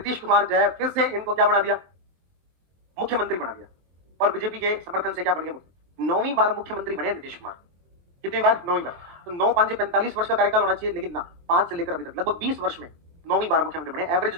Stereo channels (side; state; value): left; late; 23 ms